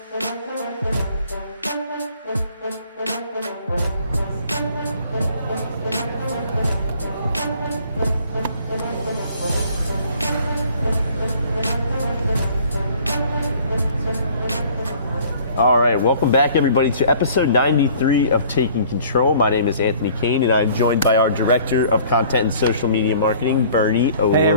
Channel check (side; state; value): both; inverted; correlation -0.54